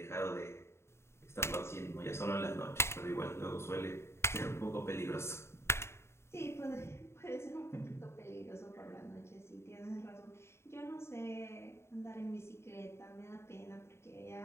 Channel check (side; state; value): right; late; 0.13 ms